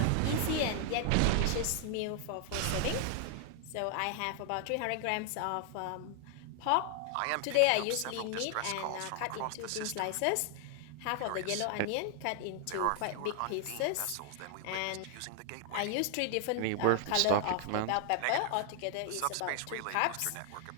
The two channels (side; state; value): both; different; correlation 0.00